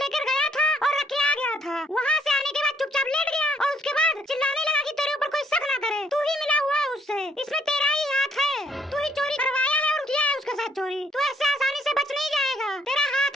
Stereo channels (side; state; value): both; normal; correlation 0.67